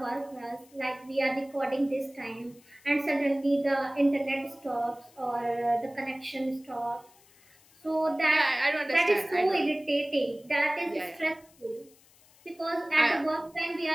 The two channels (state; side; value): noise; left; hiss, 28 dB below the sound